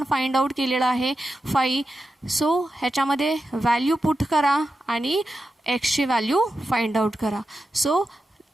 फाइंड आउट केलेलं आहे 5. सो ह्याच्यामध्ये व्हॅल्यू पुट करा आणि एक्सची व्हॅल्यू फाइंड आउट करा. सो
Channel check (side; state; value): both; normal; correlation 0.90